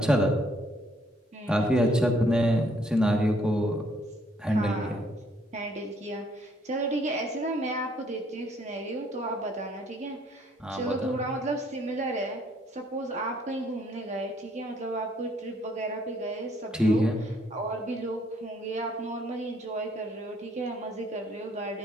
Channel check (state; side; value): normal; both; correlation 0.66